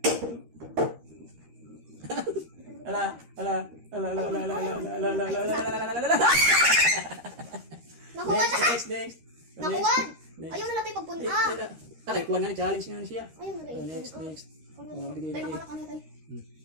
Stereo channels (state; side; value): late; left; 13 ms